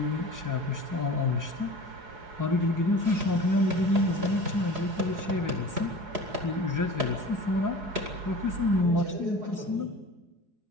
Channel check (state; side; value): late; left; 4.7 ms